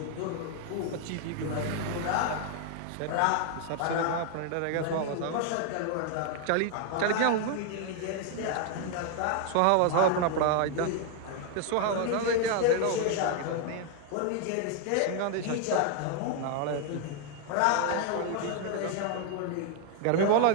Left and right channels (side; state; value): both; different; correlation 0.01